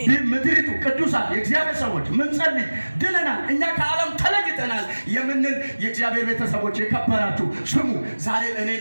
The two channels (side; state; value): both; inverted; correlation -1.00